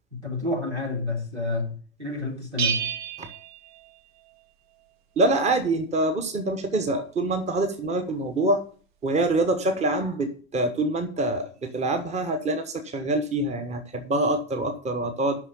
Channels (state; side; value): normal; both; correlation 0.10